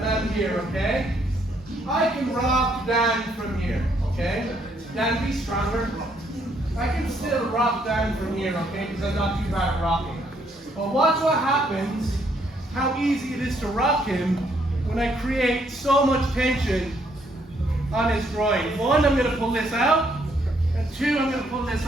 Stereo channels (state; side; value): normal; both; correlation 0.70